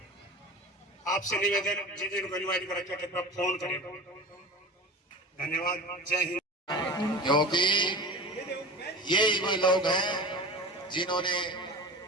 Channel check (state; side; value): normal; both; correlation 0.33